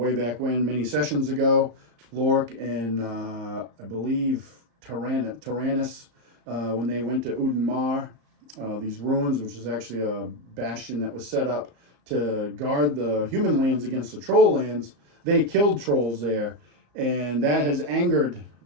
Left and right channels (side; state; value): left; late; 35 ms